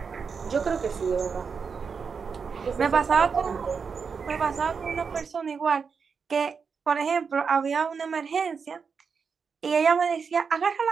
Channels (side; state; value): left; quieter; 5.7 dB